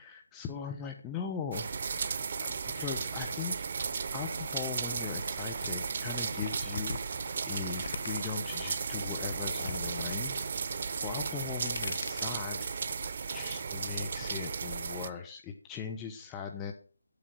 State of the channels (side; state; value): both; inverted; correlation -0.67